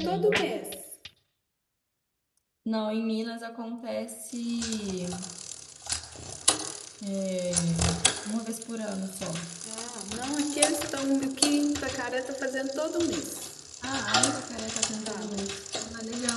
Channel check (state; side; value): identical; both; correlation 1.00